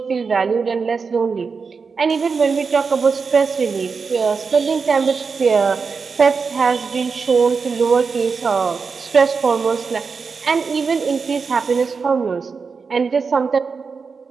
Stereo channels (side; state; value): left; quieter; 5.1 dB